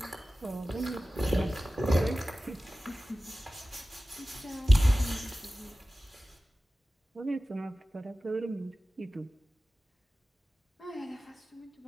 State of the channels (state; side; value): normal; both; correlation 0.96